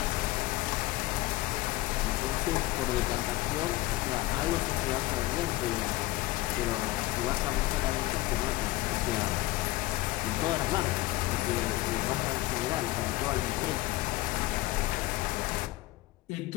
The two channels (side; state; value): right; quieter; 18.5 dB